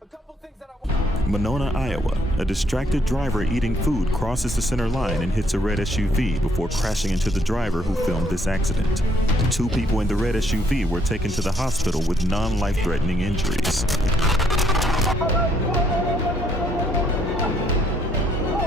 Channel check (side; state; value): both; normal; correlation 0.69